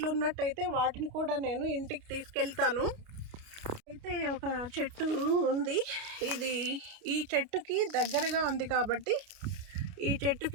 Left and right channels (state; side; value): late; left; 29 ms